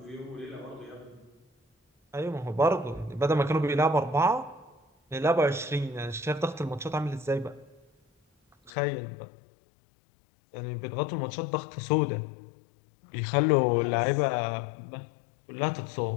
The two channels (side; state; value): right; drops out; at 8.7 s